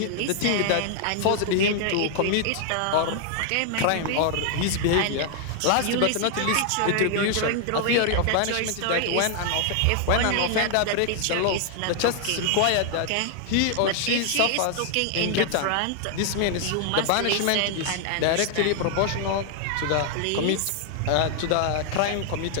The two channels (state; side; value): different; both; correlation 0.00